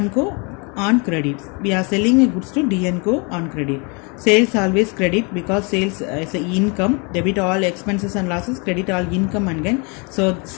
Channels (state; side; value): quieter; right; 32.3 dB